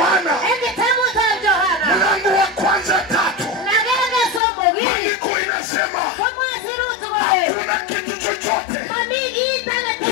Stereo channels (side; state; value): right; drops out; at 4.4 s